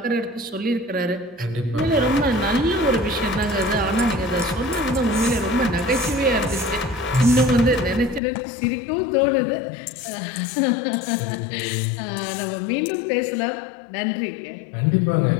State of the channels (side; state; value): right; drops out; at 8.2 s